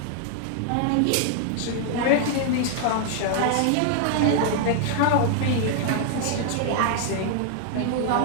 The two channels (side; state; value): both; different; correlation 0.00